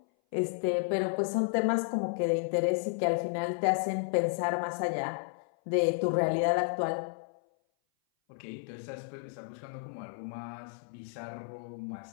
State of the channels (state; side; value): silent; right; 56 dB below the other